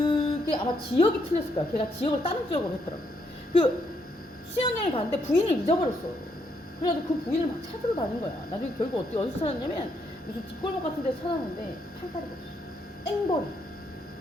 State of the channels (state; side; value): normal; both; correlation 0.75